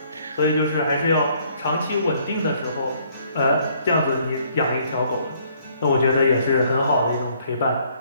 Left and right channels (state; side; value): inverted; both; correlation -0.64